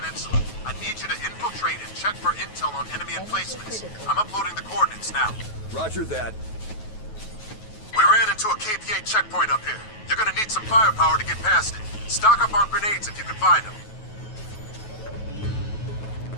I need you to infiltrate and check for intel on enemy emplacements. I'm uploading the coordinates now. Roger that. We ran into a KPA checkpoint up here. You're gonna need some firepower to get past it. Stock up on grenades if you can find them.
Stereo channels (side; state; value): right; late; 9.3 ms